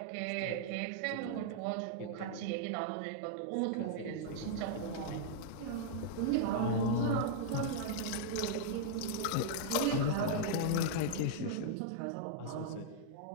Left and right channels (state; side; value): different; both; correlation -0.01